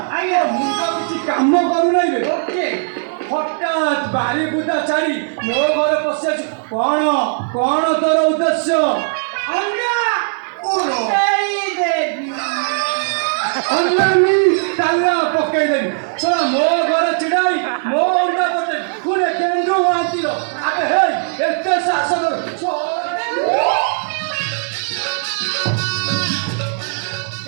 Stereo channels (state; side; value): silent; left; 60 dB below the other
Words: ଆଜ୍ଞା ମୁଁ ତ କିଛି କାମ କରୁନାହିଁ ବେ। ଓକେ ହଠାତ୍ ବାରି ବୁଦା ଛାଡ଼ି ମୋ ଘରେ ପଶି ଆଛୁ। କଣ କଣ ତୋର ଉଦ୍ଦେଶ୍ୟ? ଅଣ୍ଡା ଫୁଟେଇ ଦେବି। ଅଣ୍ଡାନି ତାଲା ପକେଇଦେବି। ଶୁଣ ମୋ ଘରେ ଛିଡ଼ାଇ ମୋ ଅଣ୍ଡା ପକେଇ ପୁଣି କେନ୍ଦୁ ମହାନ୍ତିର ଆବେ ହେଇ ଏତେ ସାହସ